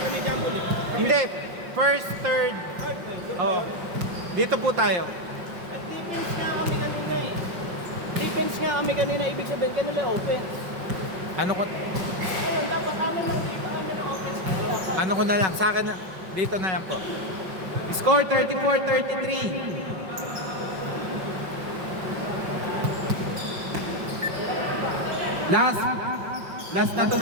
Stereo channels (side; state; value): left; late; 5.5 ms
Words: hindi, first, third. Oo. Dito po tayo. Defense nga kami kanina, ibig sabihin kanila offense. Ano ko? Ngayon, dapat amin ng offense. Ano ko na lang, sa akin na, dito na lang po. Score 34-33. Last na to